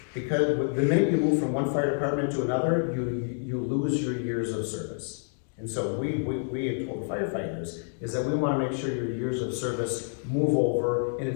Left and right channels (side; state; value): right; silent; digital silence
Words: because the minute you move from one fire department to another, you lose your years of service. And so we have told the firefighters is that we want to make sure your years of service move over and